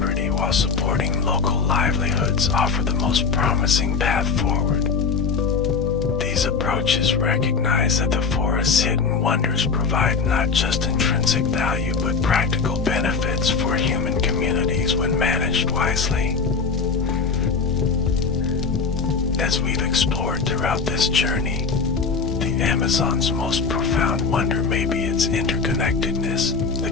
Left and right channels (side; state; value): right; quieter; 5.1 dB